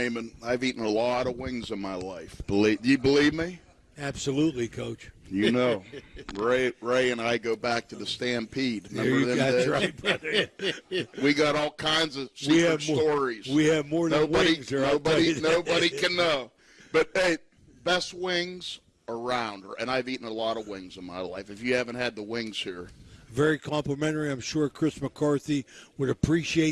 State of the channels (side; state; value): both; identical; correlation 1.00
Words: I've eaten a lot of wings in my life. Do you believe me? Absolutely, Coach. You know, Ray and I go back to the Stampede. Remember them days? Right, brother. We got all kinds of secret stories. We have more than wings here. Nobody can know. But, hey, best wings around. And I've eaten a lot of wings in my life. If you haven't had the wings here. Very complimentary. I'm sure Chris McCarthy would